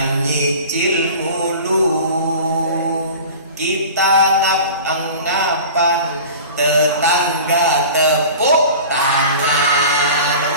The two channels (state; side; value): inverted; both; correlation -0.38